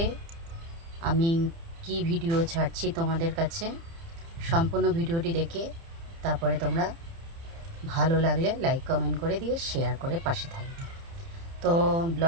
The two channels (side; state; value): left; late; 30 ms